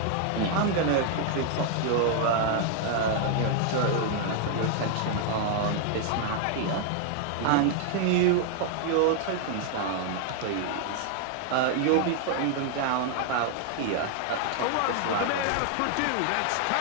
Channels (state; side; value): different; both; correlation 0.00